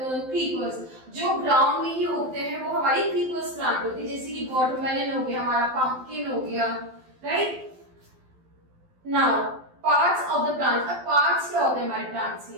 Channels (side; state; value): left; late; 12 ms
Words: creepers. जो ground में ही उगते हैं वो हमारी creepers plant होती है, जैसे कि watermelon हो गया, हमारा pumpkin हो गया, right? Now parts of the plant. अब parts क्या होते हैं हमारे plants